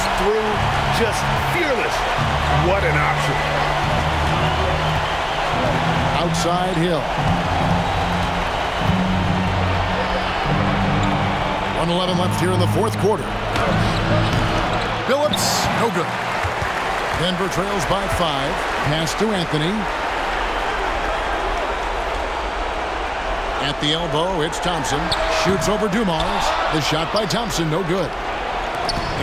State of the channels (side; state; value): both; identical; correlation 1.00